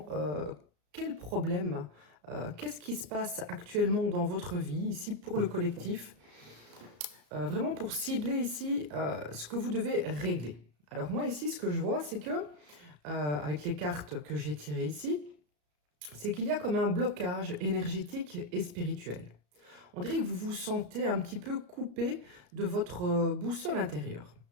quel problème, qu'est-ce qui se passe actuellement dans votre vie ici pour le collectif. Vraiment pour cibler ici ce que vous devez régler. Alors moi ici ce que je vois c'est que avec les cartes que j'ai tirées ici, c'est qu'il y a comme un blocage énergétique et spirituel. On dirait que vous vous sentez un petit peu coupé de votre boussole intérieure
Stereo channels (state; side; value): late; left; 34 ms